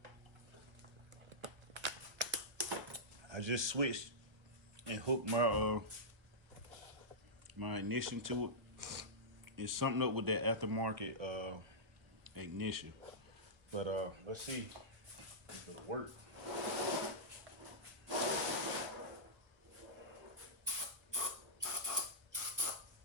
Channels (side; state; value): left; late; 1.3 ms